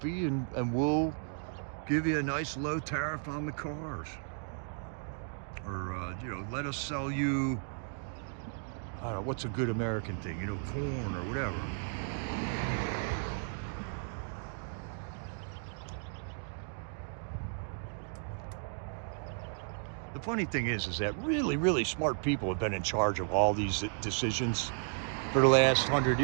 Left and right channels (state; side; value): silent; left; 55 dB below the other